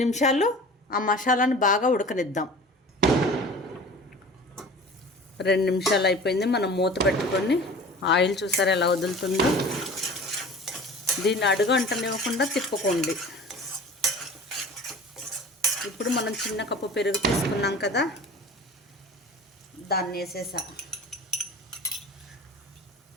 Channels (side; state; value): both; normal; correlation 0.41